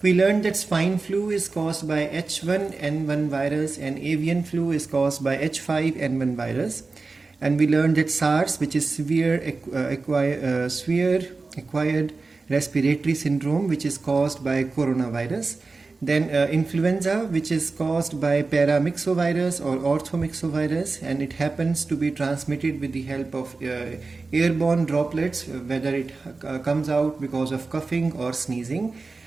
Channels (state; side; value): quieter; left; 3.9 dB